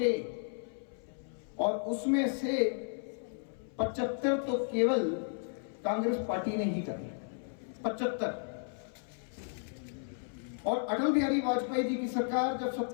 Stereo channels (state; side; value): silent; right; 55 dB below the other